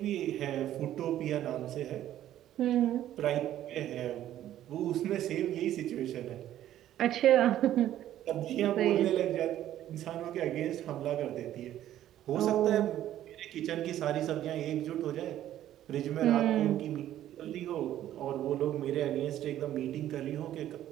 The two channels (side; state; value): left; quieter; 12.4 dB